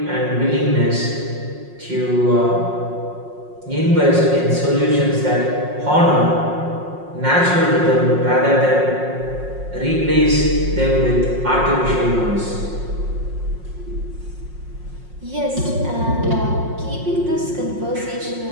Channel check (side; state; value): left; late; 5.5 ms